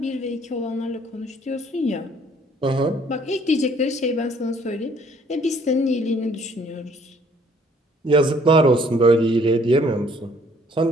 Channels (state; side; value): normal; both; correlation 0.60